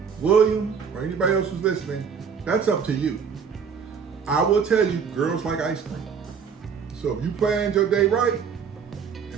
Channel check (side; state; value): left; quieter; 6.5 dB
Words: William, or anybody else who's listening, that's up to you. I will tell you, girls like ice cream. So if you planned your day right